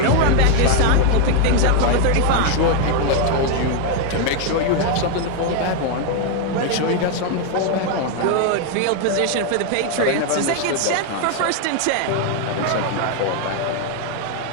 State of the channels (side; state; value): both; different; correlation 0.01